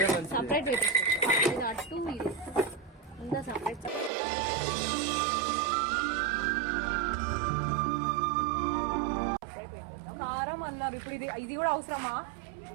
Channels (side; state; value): left; drops out; at 4.1 s